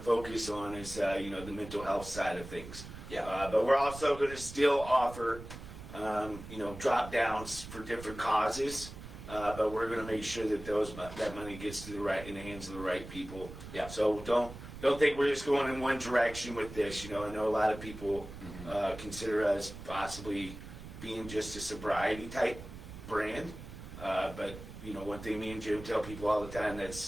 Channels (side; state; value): right; noise; rumble, 13 dB below the sound